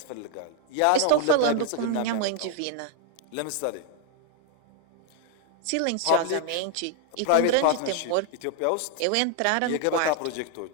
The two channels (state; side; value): different; both; correlation 0.00